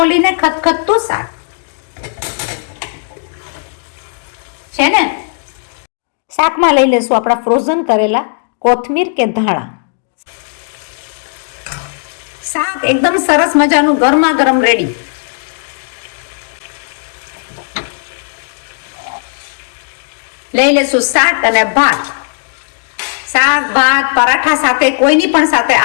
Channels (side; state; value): right; silent; digital silence